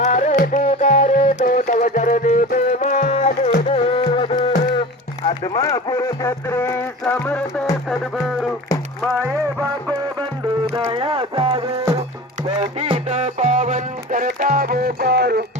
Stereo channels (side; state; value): both; normal; correlation 0.34